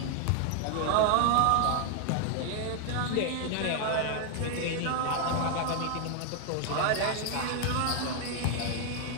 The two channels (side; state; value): both; different; correlation 0.00